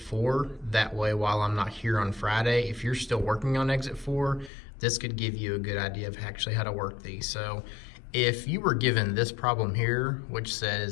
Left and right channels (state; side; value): drops out; right; at 4.5 s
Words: That way, while I'm not here on Friday, if you're still working on Exit 4, this could give you a good idea of actually how to work these. So if you were given this problem here, which